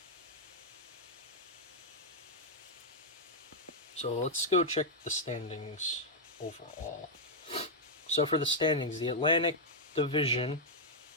So let's go check the standings overall. So for the standings, the Atlantic Division,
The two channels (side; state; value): both; normal; correlation -0.04